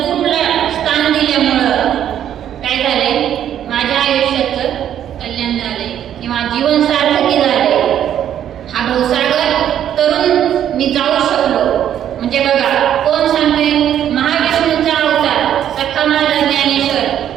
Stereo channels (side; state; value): left; quieter; 10.3 dB